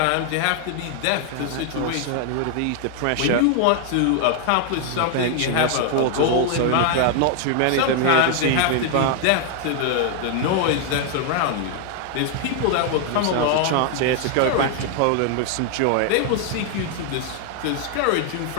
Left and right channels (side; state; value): both; different; correlation 0.00